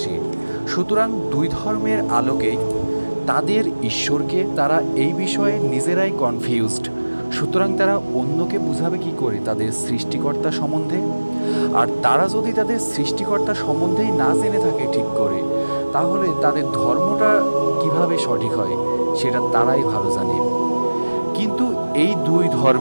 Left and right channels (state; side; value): inverted; both; correlation -1.00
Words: সুতরাং দুই ধর্মের আলোকে তাদের ঈশ্বরকে তারা এই বিষয়ে নিজেরাই কনফিউজড। সুতরাং তারা অন্যকে বুঝাবে কি করে তাদের সৃষ্টিকর্তা সম্বন্ধে? আর তারা যদি তাদের সৃষ্টিকর্তা সম্বন্ধেই না জেনে থাকে ঠিক করে, তাহলে তাদের ধর্মটা কিভাবে সঠিক হয় সেটা তারাই ভালো জানে। কিন্তু এই দুই